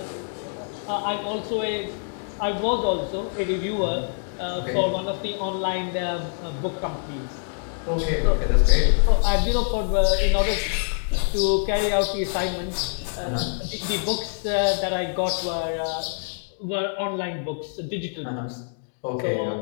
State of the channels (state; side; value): silent; right; 62 dB below the other